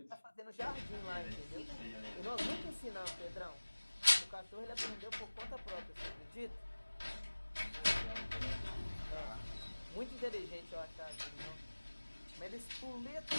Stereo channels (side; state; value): both; inverted; correlation -1.00